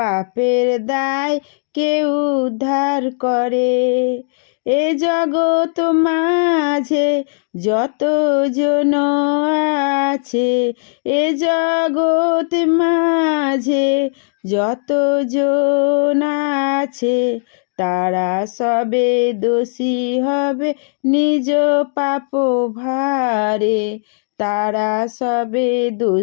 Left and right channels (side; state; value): right; silent; digital silence